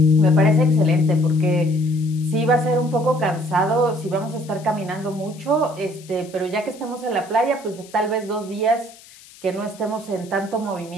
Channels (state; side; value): noise; left; hiss, 22 dB below the sound